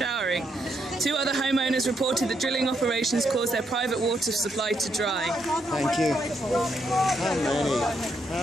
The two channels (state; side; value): normal; both; correlation 0.77